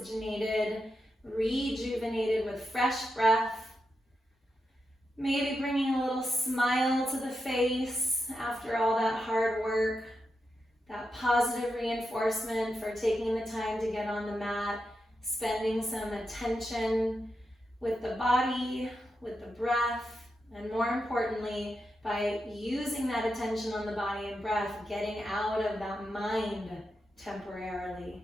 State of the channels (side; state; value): both; normal; correlation 0.87